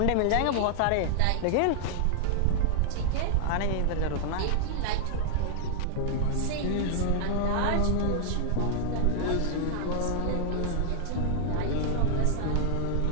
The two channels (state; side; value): different; both; correlation -0.01